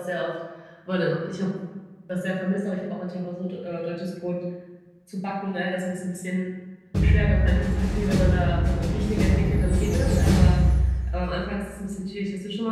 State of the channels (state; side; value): identical; both; correlation 1.00